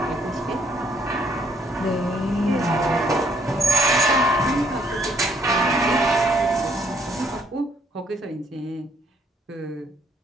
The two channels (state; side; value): normal; both; correlation 0.69